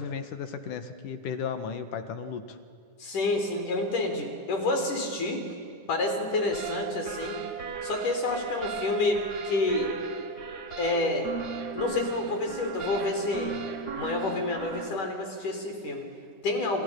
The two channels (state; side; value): late; right; 10 ms